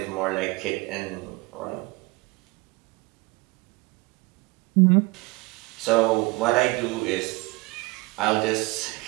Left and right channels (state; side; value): quieter; left; 24.2 dB